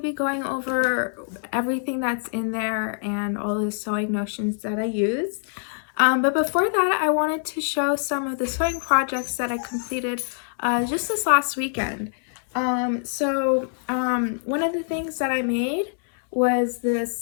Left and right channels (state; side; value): silent; right; digital silence